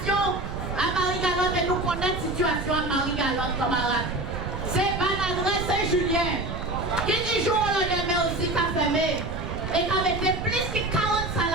à Marie-Galante, et nous connaissons la situation à Marie-Galante, camarades. C'est Banadresse Saint-Julien qui du jour au lendemain aussi qu'a fermé et qui a été plus que 40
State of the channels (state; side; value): noise; right; rumble, 6 dB below the sound